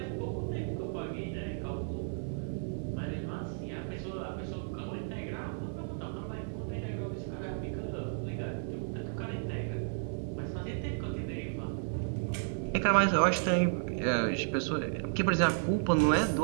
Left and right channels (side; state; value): left; silent; 56 dB below the other